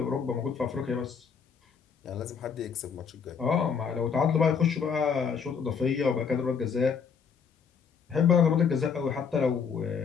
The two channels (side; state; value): right; quieter; 6.4 dB